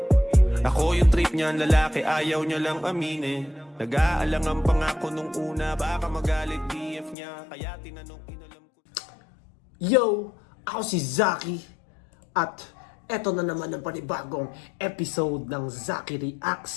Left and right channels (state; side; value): drops out; right; at 7.2 s